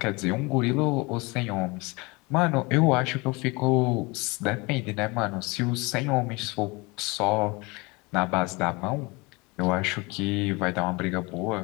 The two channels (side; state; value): right; quieter; 26.1 dB